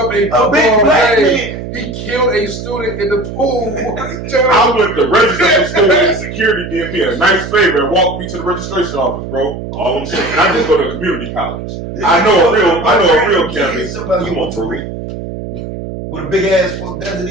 a big black man. He killed a student in the pool. I went to register for school and security did me a nice favor and walked me to the registration office, bro. All I'm saying. And I just go to community college. I know a real campus. Somebody you want to read. With a big ass Desert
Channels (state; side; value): noise; right; hum, 8 dB below the sound